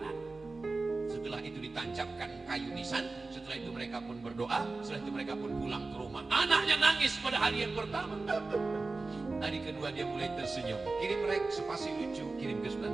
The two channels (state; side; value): quieter; left; 3.6 dB